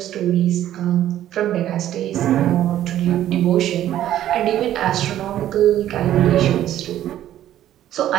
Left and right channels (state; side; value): quieter; left; 12.3 dB